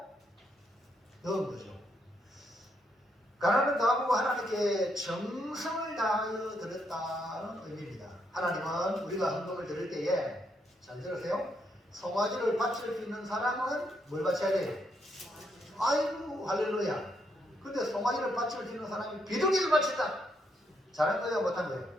넣은 거죠. 가난한 가구가 하나님께 정성을 다하여 드렸다는 의미입니다. 하나님은 우리가 헌금을 드릴 때에 잘 들으세요. 송아지를 바칠 수 있는 사람은 뭘 바쳐야 돼요? 아이고 할렐루야. 근데 송아지를 바칠 수 있는 사람이 비둘기를 바친다. 잘한 거예요? 못한 거예요?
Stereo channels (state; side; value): normal; both; correlation 0.77